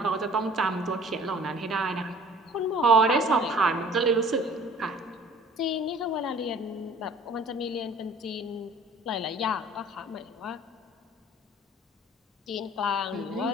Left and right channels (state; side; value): normal; both; correlation 0.50